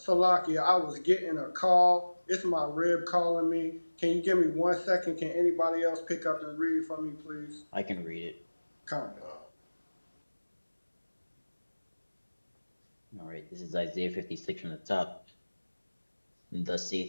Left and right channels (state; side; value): inverted; both; correlation -1.00